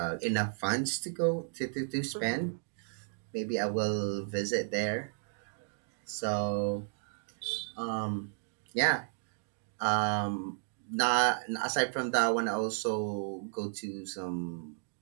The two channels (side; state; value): left; silent; digital silence